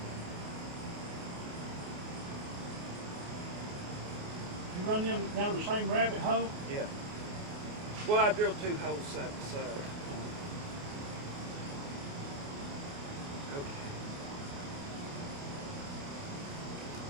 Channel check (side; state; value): left; late; 28 ms